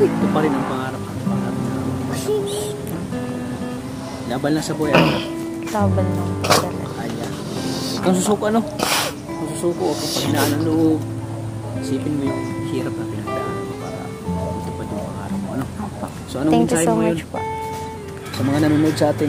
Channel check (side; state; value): both; identical; correlation 1.00